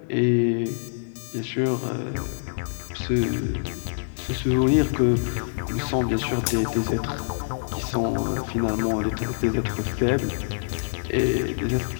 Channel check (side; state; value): right; silent; digital silence